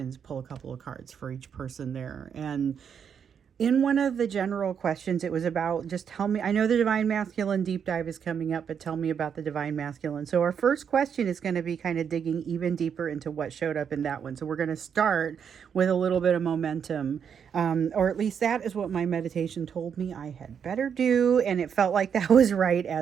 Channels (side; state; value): left; quieter; 7.5 dB